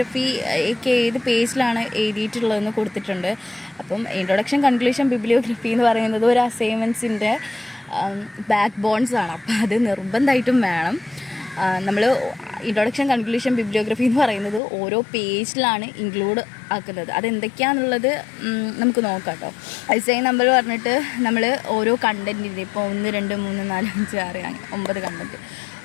ഒക്കെ ഏത് പേജിലാണ് എഴുതിയിട്ടുള്ളതെന്ന് കൊടുത്തിട്ടുണ്ട്. അപ്പം ഇൻട്രൊഡക്ഷൻ, കൺക്ലൂഷൻ, ബിബ്ലിയോഗ്രഫി എന്ന് പറയുന്നത് ഒരു അസൈൻമെൻറ്റ്സിൻ്റെ ബാക്ക് ബോൺസ് ആണ്. അപ്പം അത് നിർബന്ധമായിട്ടും വേണം. നമ്മൾ ഇൻട്രൊഡക്ഷൻ, കൺക്ലൂഷൻ, ബിബ്ലിയോഗ്രഫി എന്ന് പറയുന്നത് ഓരോ പേജിലാണ് ഇൻക്ലൂഡ് ആക്കുന്നത്. അതെന്തൊക്കെയാണെന്നുള്ളത് നമുക്ക് നോക്കാം കേട്ടോ. ഐസൈൻ നമ്പർ പറഞ്ഞിട്ട് നമ്മൾ ഓരോ കണ്ടൻറ്റിൻ്റെ ഇപ്പോൾ 1, 2, 3, 4, 5, 6 അങ്ങനെ 9 കണ്ടൻറ്റ്.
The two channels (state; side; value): drops out; right; at 14.6 s